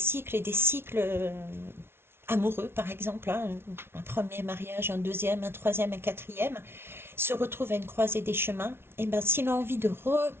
et des cycles amoureux, par exemple, hein, un premier mariage, un deuxième, un troisième, un quatrième, se retrouve à une croisée des chemins. Et ben, s'il a envie de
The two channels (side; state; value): left; late; 0.12 ms